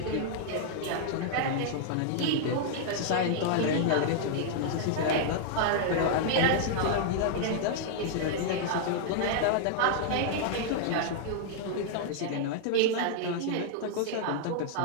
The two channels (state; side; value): different; both; correlation -0.01